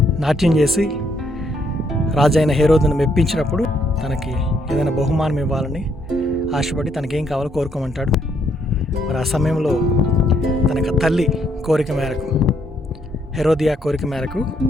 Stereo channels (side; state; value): both; normal; correlation 0.72